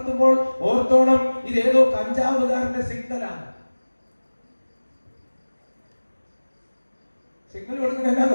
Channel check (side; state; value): both; inverted; correlation -1.00